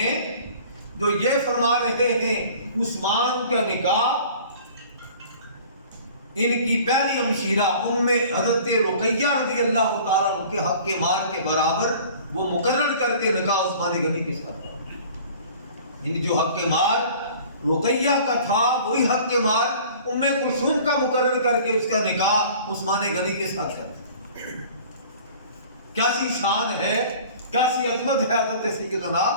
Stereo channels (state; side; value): inverted; both; correlation -0.47